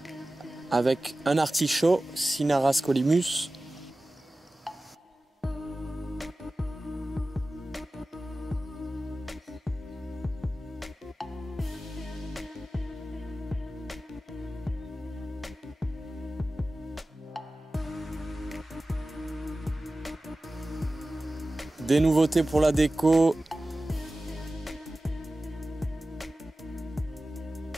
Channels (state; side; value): normal; both; correlation 0.96